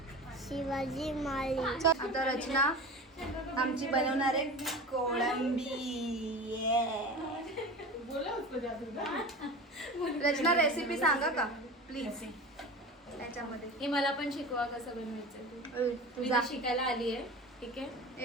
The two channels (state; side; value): normal; both; correlation 0.32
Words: शिवाजी माळी. आता रचना आमची बनवणार आहे कोळंबी. रचना रेसिपी सांगा का प्लीज त्याच्यामध्ये. हे मला पण शिकवा कसं बनवायचं. मी तुझा तर शिकायला आली आहे. ठीक आहे,